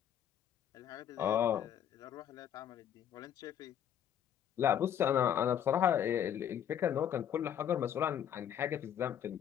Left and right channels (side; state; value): right; quieter; 9.6 dB